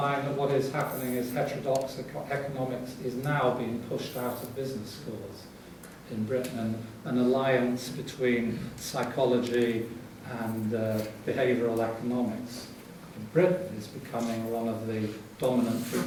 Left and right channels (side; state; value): both; identical; correlation 1.00